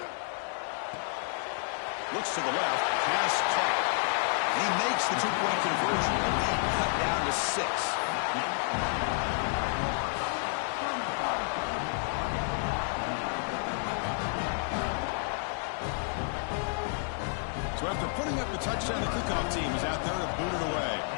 Looks to the left. Pass caught. He makes the 2-point conversion. The lead cut down to 6. So after putting up the touchdown, the kickoff team is out there to boot it away.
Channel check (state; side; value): silent; right; 55 dB below the other